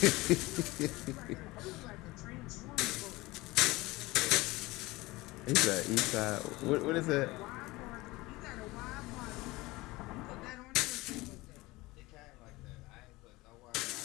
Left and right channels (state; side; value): quieter; right; 21.0 dB